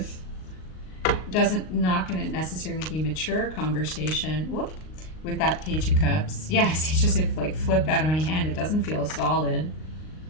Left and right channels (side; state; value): right; late; 38 ms